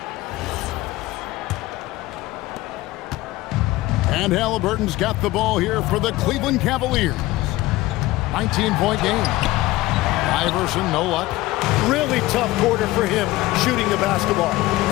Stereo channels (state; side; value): quieter; right; 18.1 dB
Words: And Halliburton's got the ball here for the Cleveland Cavaliers. 19-point game. Iverson, no luck. Really tough quarter for him shooting the basketball.